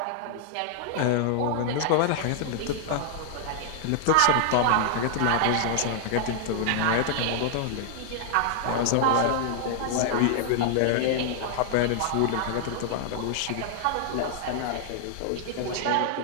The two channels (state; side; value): different; both; correlation -0.01